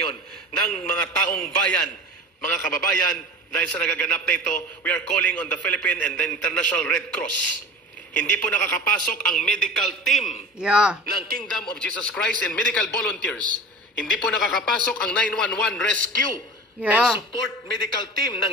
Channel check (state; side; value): normal; both; correlation 0.35